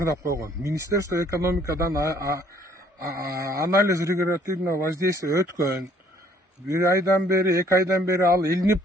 койгон. Министерство экономикадан анализ регулятивного воздействия өткөн. 1 айдан бери, 2 айдан бери ал илинип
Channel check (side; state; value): both; normal; correlation 0.61